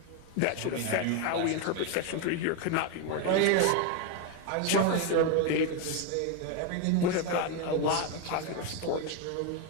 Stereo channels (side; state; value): both; different; correlation 0.02